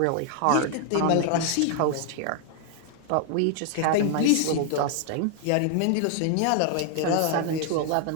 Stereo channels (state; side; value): different; both; correlation 0.00